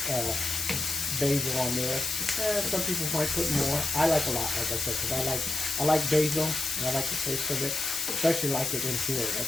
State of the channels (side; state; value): left; noise; hiss, 2 dB below the sound